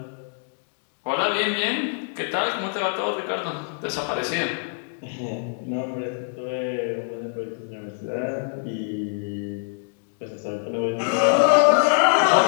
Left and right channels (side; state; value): right; silent; digital silence